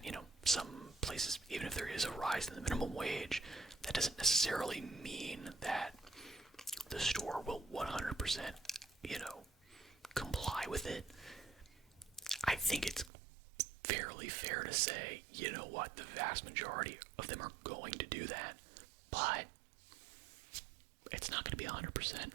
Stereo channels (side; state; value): left; drops out; at 13.1 s